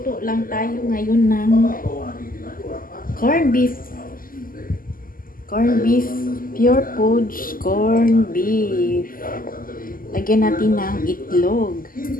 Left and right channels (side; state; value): right; late; 0.41 ms